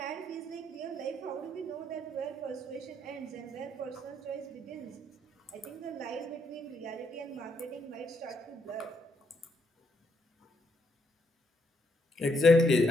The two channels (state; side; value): normal; both; correlation 0.75